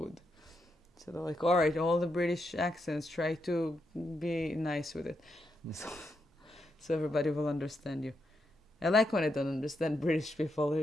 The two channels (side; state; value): both; normal; correlation 0.83